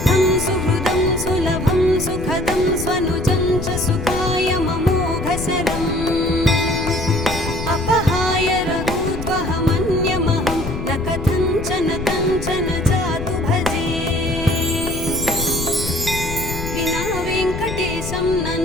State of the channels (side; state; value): left; noise; rumble, 7 dB below the sound